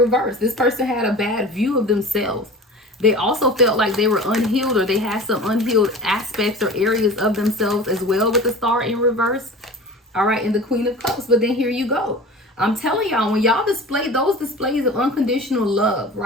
This person had a bad view of themselves. They also felt like they were unhealed, or they had some unhealed aspects or areas of themselves as well with the Star in reverse. All right, and the Queen of Cups. But then here you go. I'm telling y'all, when y'all display those displays of unconditional love,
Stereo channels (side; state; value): both; normal; correlation 0.37